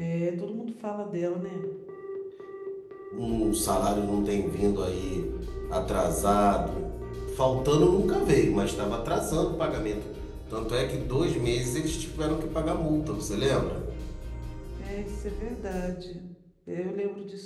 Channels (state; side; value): identical; both; correlation 1.00